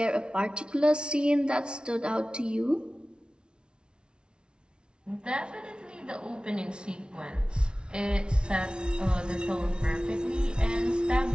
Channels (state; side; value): late; left; 0.056 ms